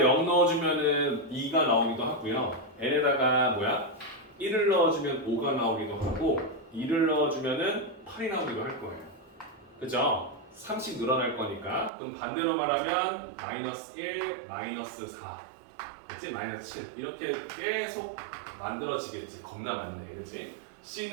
넣어주면은 2가 나오기도 하고요. n에다가 1을 넣어주면 5가 나오기도 하고 2를 넣어주면은 8이 나오기도 할 거예요. 그죠? 3씩 늘어날 거니까. 그럼 반대로 말하면 마이너스 1, 마이너스 4, 그치? 마이너스 7 이렇게 계속 만들어지겠지. 겁나 많네, 그치?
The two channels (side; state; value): left; drops out; at 11.9 s